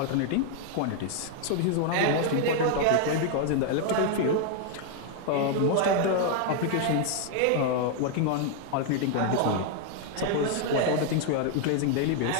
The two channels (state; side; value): different; both; correlation 0.00